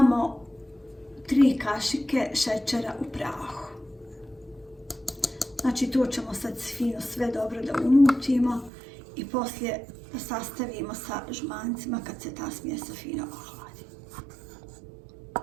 3 kašike šećera u prahu. Znači to ćemo sad fino sve dobro da umutimo i poslije da sastavimo sa žumancima kad se ta smjesa fino ohladi.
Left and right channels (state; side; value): drops out; left; at 8.7 s